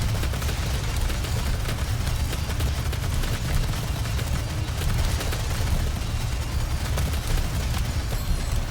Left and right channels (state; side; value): identical; both; correlation 1.00